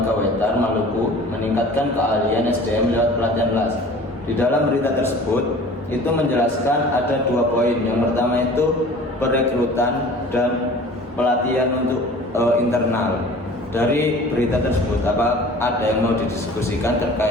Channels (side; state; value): both; normal; correlation 0.44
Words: Wetar Maluku meningkatkan keahlian SDM lewat pelatihan LAS. Di dalam berita tersebut itu menjelaskan ada 2 poin. Yang pertama itu perekrutan dan pelatihan untuk internal. Dari berita tersebut apa ada yang mau didiskusikan